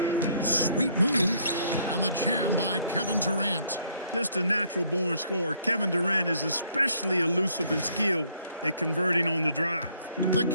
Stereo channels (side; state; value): both; inverted; correlation -0.66